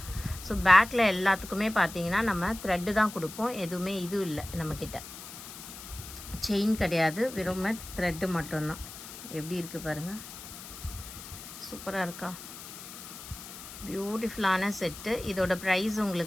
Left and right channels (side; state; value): left; noise; hiss, 13 dB below the sound